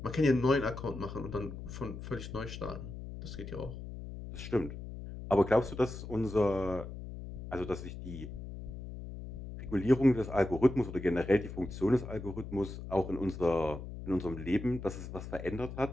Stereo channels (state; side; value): noise; left; hum, 10 dB below the sound